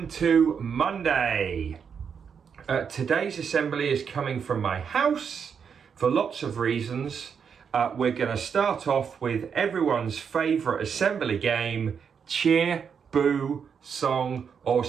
to Monday. Today's assembly is coming from my house for lots of reasons. We're going to start off with everyone's favourite assembly game, cheer, boo, song or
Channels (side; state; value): left; quieter; 6.8 dB